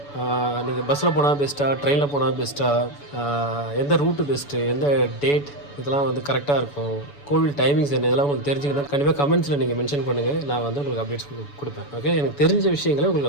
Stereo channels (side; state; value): right; late; 7.0 ms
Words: நீங்கள் பஸ்ஸில் போனால் பெஸ்ட்டாக, ட்ரெயினில் போனால் பெஸ்ட்டாக, எந்த ரூட்டு பெஸ்ட்டு, எந்த டேட், இதெல்லாம் வந்து கரெக்டாக இருக்கும், கோவில் டைமிங்ஸ் என்ன, இதெல்லாம் உங்களுக்கு தெரிஞ்சுக்கணும். கண்டிப்பாக கமெண்ட்ஸில் நீங்கள் மென்ஷன் பண்ணுங்கள், நான் வந்து உங்களுக்கு அப்டேட்ஸ் கொடுப்பேன். ஓகே, எனக்கு தெரிஞ்ச விஷயங்களை